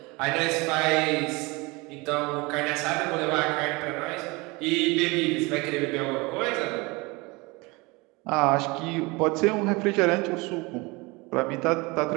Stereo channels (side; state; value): left; quieter; 25.3 dB